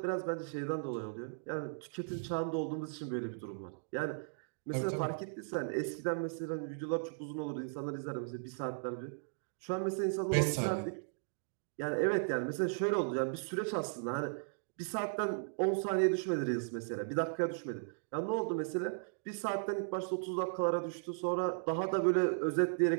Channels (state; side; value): silent; left; digital silence